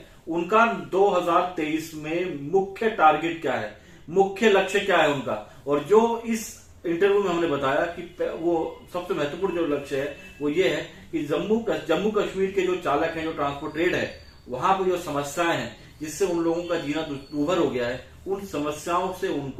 उनका 2023 में मुख्य टारगेट क्या है, मुख्य लक्ष्य क्या है उनका। और जो इस इंटरव्यू में हमने बताया कि वो सबसे महत्वपूर्ण जो लक्ष्य है वो ये है कि जम्मू कश्मीर के जो चालक हैं, जो ट्रांसपोर्ट ट्रेड है, वहां पर जो समस्याएं हैं जिससे उन लोगों का जीना दुर्भर हो गया है, उन समस्याओं से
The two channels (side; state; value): both; identical; correlation 1.00